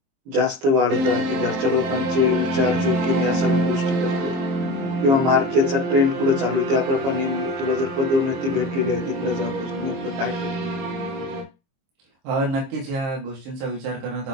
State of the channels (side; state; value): left; late; 22 ms